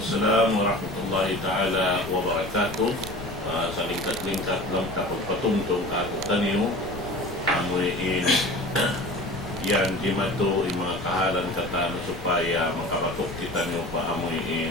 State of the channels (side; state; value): left; noise; rumble, 13 dB below the sound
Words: warahmatullahi ta'ala wabarakatuh. Sa lingkat-lingkat lang kapagpatungtong kakutan niyo, amuin yan, di mato yung mga kahalan katano supaya makapatok kita niyo pa